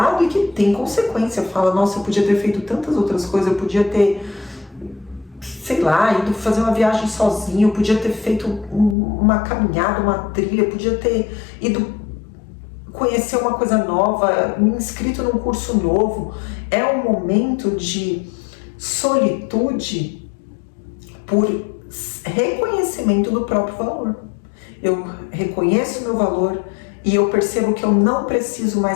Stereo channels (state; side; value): drops out; right; at 9.0 s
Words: e que tem consequência. Fala, nossa, eu podia ter feito tantas outras coisas, eu podia ter, sei lá, ido fazer uma viagem sozinho, eu podia ter feito uma caminhada, uma trilha, eu podia ter ido conhecer uma coisa nova, me inscrito num curso novo. É um momento de solitude por reconhecimento do próprio valor. Eu reconheço o meu valor e eu percebo que eu não preciso